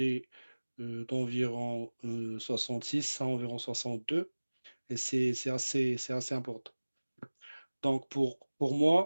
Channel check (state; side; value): inverted; both; correlation -1.00